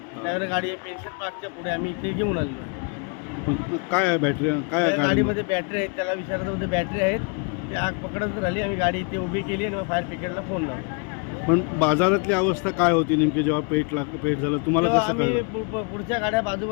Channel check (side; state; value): right; quieter; 34.6 dB